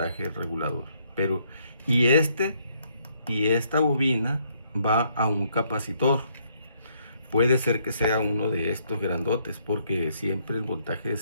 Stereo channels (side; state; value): both; inverted; correlation -0.70